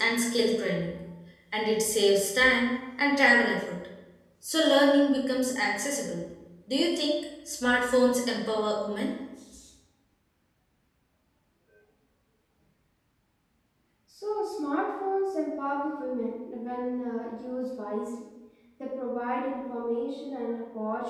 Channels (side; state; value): both; identical; correlation 1.00